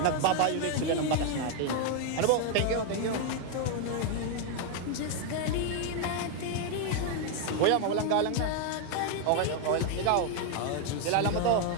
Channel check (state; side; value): different; both; correlation 0.01